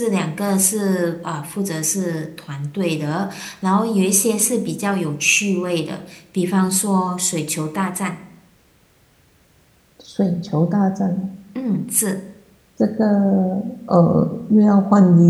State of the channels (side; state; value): both; identical; correlation 1.00